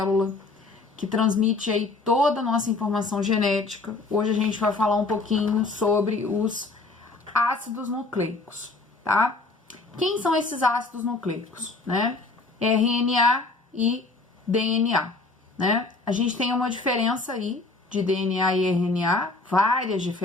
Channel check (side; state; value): right; quieter; 3.5 dB